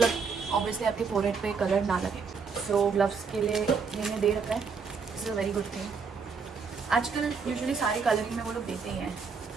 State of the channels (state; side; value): quieter; left; 5.4 dB